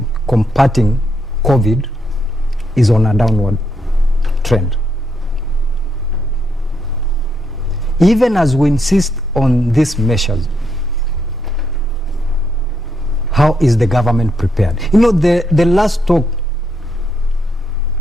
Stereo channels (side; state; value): both; normal; correlation 0.78